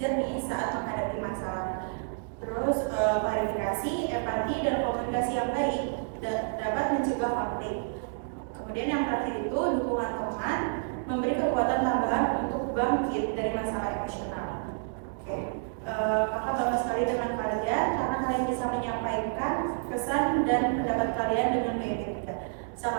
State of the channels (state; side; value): silent; left; digital silence